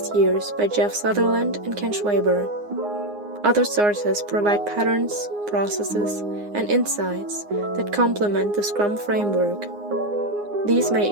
years by Jeff Sutherland and Ken Schwaber. Other sources provide patterns, processes, and insights that complement the Scrum framework. These may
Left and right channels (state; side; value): late; left; 9.7 ms